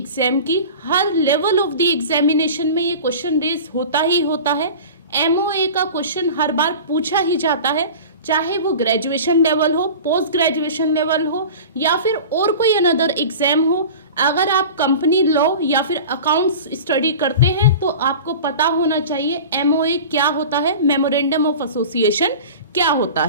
की, हर लेवल ऑफ द एग्जामिनेशन में ये क्वेश्चन रेज होता ही होता है। MOA का क्वेश्चन हर बार पूछा ही जाता है, चाहे वो ग्रेजुएशन लेवल हो, पोस्ट ग्रेजुएशन लेवल हो या फिर और कोई अनदर एग्जाम हो। अगर आप कंपनी लॉ या फिर अकाउंट्स स्टडी करते हैं तो आपको पता होना चाहिए MOA क्या होता है, मेमोरेंडम ऑफ एसोसिएशन क्या होता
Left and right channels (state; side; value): inverted; both; correlation -0.36